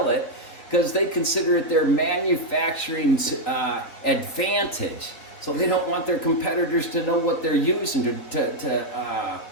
it because they consider it their manufacturing advantage. So they don't want their competitors to know what they're using to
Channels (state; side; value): late; right; 3.6 ms